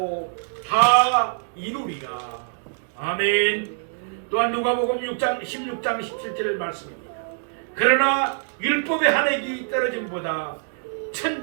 다 이루리라. 아멘. 또한 누가복음 6장 16장 17절 말씀입니다. 그러나 율법의 한 획이 떨어짐보다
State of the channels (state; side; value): silent; left; digital silence